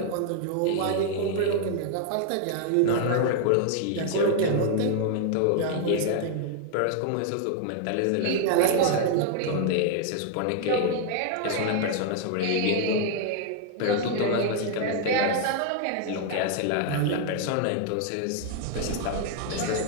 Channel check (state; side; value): different; both; correlation 0.00